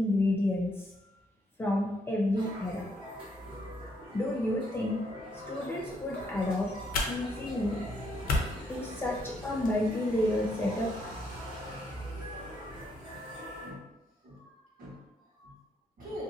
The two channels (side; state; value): both; normal; correlation 0.73